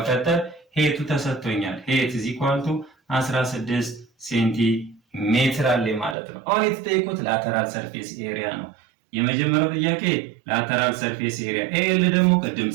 ሄቱ ተሰጥቶኛል ሄት is equal to 16 ሴንቲሜትር አለ ማለት ነው። አሁን የተጠየቁት ላተራል ሰርፌስ ኤሪያ ነው። የመጀመሪያው ጥያቄ ላተራል ሰርፌስ ኤሪያ ኤል ደግሞ ቅድም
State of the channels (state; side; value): drops out; left; at 6.2 s